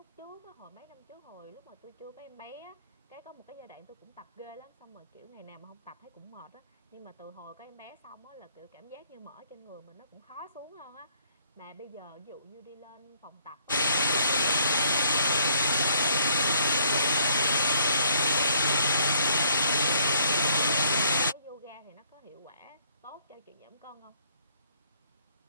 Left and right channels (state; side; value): inverted; both; correlation -0.66